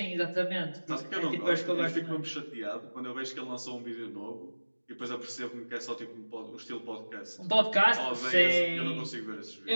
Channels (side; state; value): both; inverted; correlation -1.00